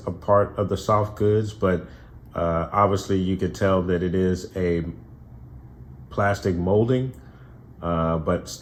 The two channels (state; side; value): identical; both; correlation 1.00